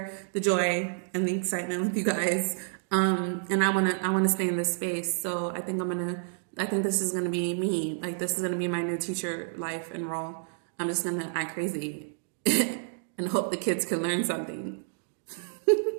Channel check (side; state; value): left; silent; digital silence